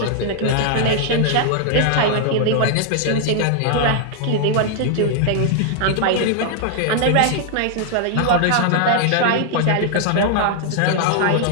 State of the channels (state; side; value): different; both; correlation 0.00